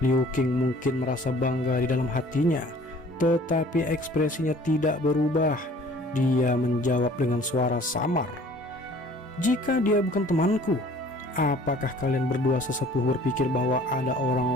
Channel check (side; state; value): both; normal; correlation 0.52